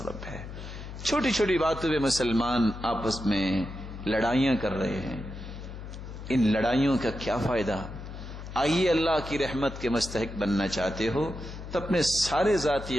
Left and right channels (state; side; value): noise; left; hum, 11 dB below the sound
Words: ہے. چھوٹی چھوٹی باتوں پہ مسلمان آپس میں لڑائیاں کر رہے ہیں. ان لڑائیوں کا کیا فائدہ؟ آئیے اللہ کی رحمت کے مستحق بننا چاہتے ہو تو اپنے سارے ذاتی